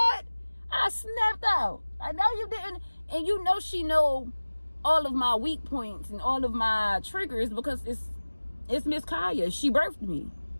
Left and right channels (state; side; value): inverted; both; correlation -1.00